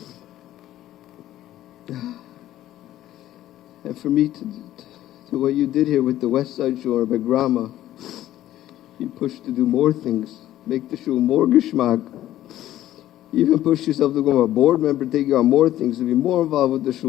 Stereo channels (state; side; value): quieter; right; 13.5 dB